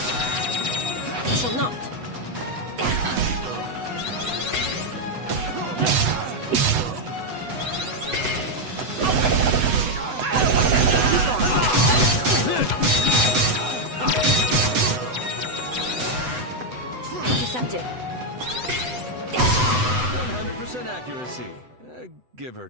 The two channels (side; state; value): left; late; 8.0 ms